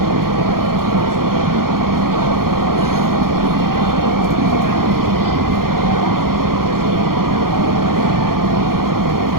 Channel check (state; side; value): late; left; 0.92 ms